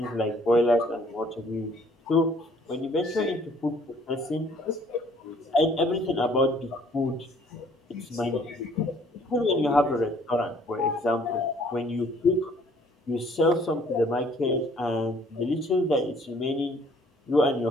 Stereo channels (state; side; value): normal; both; correlation 0.59